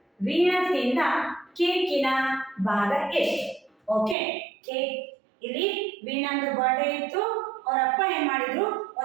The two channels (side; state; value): left; drops out; at 4.2 s